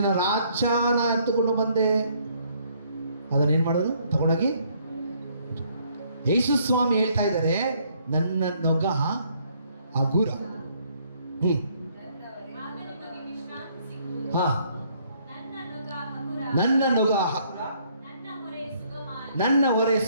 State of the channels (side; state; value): both; inverted; correlation -0.66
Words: ರಾಜನ ಎತ್ತುಕೊಂಡು ಬಂದೆ, ಅದನ್ನೇನ್ ಮಾಡೋದು? ತಗೊಂಡೋಗಿ ಯೇಸು ಸ್ವಾಮಿ ಹೇಳ್ತಾ ಇದ್ದಾರೆ, ನನ್ನ ನೊಗ ಹಗುರ. ಹಾ, ನನ್ನ ನೊಗ ಹಗುರ, ನನ್ನ ಹೊರೆ